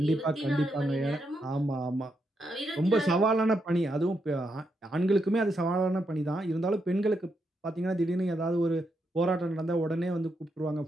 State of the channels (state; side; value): normal; both; correlation 0.81